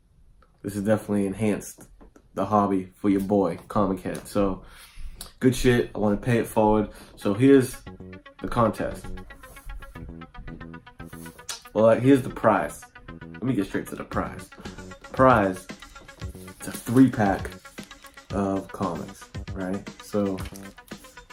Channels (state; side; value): identical; both; correlation 1.00